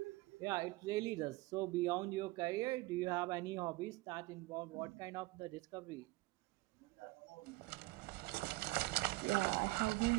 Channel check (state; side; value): quieter; left; 20.9 dB